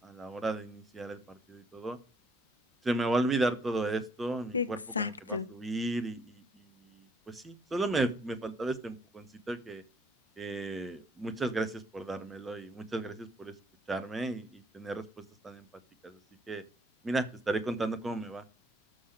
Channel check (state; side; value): normal; both; correlation 0.66